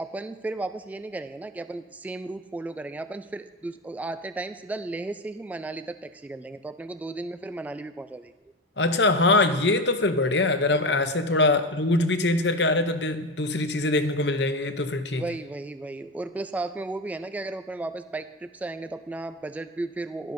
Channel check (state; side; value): normal; both; correlation 0.22